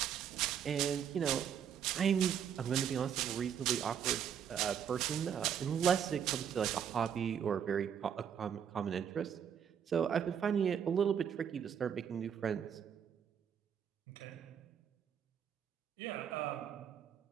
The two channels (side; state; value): left; quieter; 8.3 dB